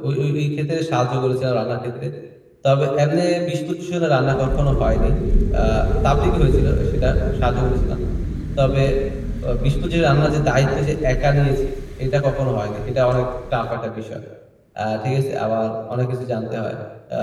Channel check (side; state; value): both; identical; correlation 1.00